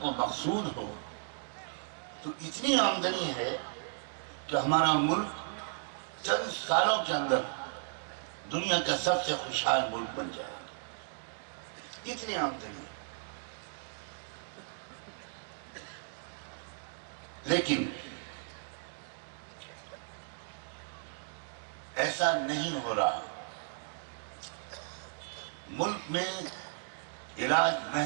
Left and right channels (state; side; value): silent; left; digital silence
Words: مقصود ہو، تو اتنی آمدنی ہے کہ ہمارا ملک چند سالوں کے اندر دنیا کا سب سے خوشحال ملک بن جائے گا، اتنی آمدنی ہے۔ لیکن ایسا نہیں ہو رہا، ملک میں علاج